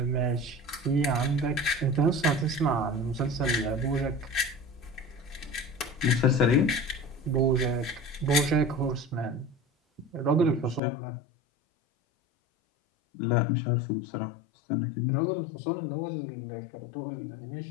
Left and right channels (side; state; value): right; drops out; at 10.8 s